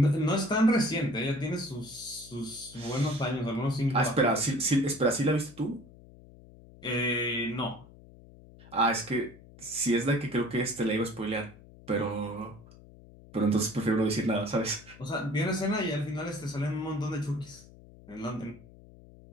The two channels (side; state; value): left; noise; hum, 21 dB below the sound